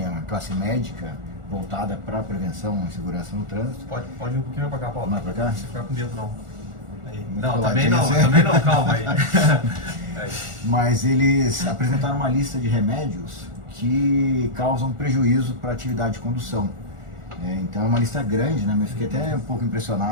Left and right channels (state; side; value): late; left; 1.4 ms